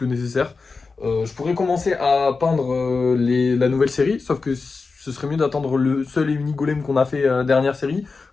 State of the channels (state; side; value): quieter; right; 4.3 dB